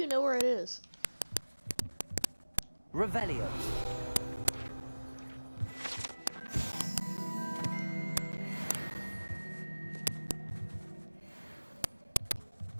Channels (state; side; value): inverted; both; correlation -1.00